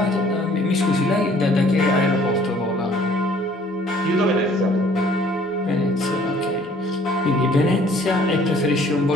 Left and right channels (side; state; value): both; normal; correlation 0.57